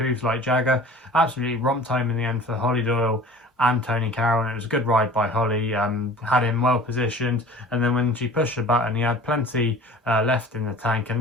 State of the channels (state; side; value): normal; both; correlation 0.43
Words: Like Jagger. Absolutely romped home in the end for Holly Doyle and Tony Carroll, and it was a good ride by Holly. Had him well positioned, and then when she pushed the button, he had plenty left in the tank,